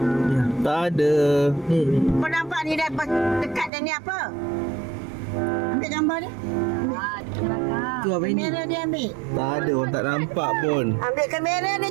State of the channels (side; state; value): left; drops out; at 3.7 s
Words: Tak ada. Kau nampak ni dah dekat dan ni apa? Ambil gambar dia. Tu apa ini? Kamera dia ambil. Tak ada, orang tak nampak pun. Ambil kamera ni